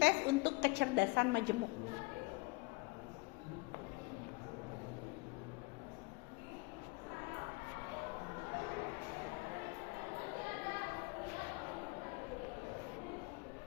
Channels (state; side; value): quieter; right; 26.6 dB